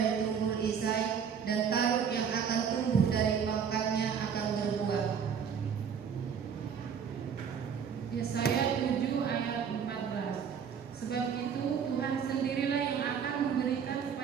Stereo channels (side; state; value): left; quieter; 7.2 dB